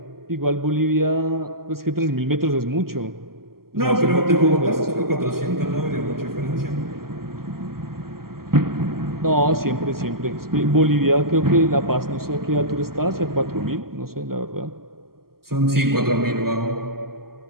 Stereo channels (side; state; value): left; late; 0.93 ms